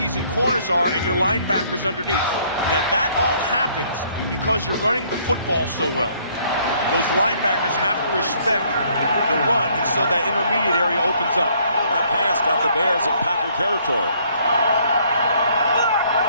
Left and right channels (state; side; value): inverted; both; correlation -0.64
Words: and corners are, and your linebackers underneath. Now that all happens because you're running the football so well. Those linebackers have to respect the run, and so that intermediate area opens up. That pass got the Bears in Packer territory.